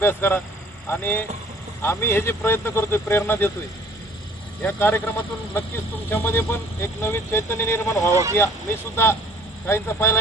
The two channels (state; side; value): normal; both; correlation 0.54